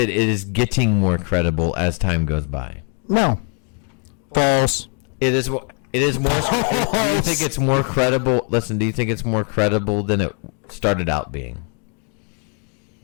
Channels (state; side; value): quieter; right; 39.6 dB